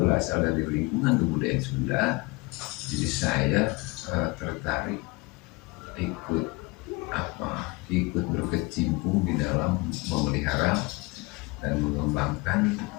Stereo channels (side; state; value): right; quieter; 25.2 dB